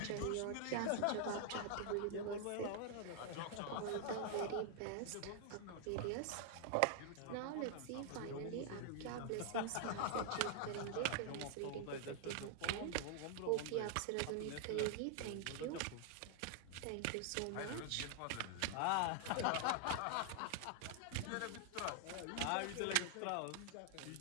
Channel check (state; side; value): different; both; correlation 0.00